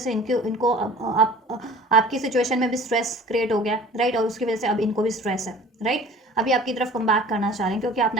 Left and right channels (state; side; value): normal; both; correlation 0.45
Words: इनको आपकी सिचुएशन में भी स्ट्रेस क्रिएट हो गया, राइट, और उसकी वजह से अब इनको भी स्ट्रेस है, राइट। अभी आपकी तरफ कम बैक करना चाह रहे हैं क्योंकि आप